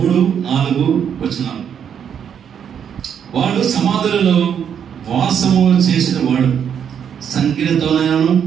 వచనాలు. వాడు సమాధులలో వాసము చేసిన వాడు సంఖ్యలతోనైనను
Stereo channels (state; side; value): quieter; left; 8.2 dB